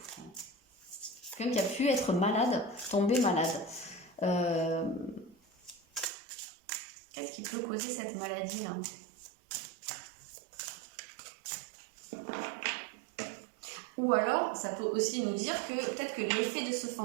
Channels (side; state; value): left; drops out; at 6.1 s